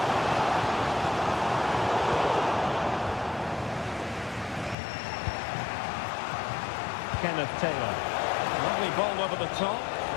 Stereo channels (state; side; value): drops out; right; at 4.8 s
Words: Kenneth Taylor. Lovely ball over the top.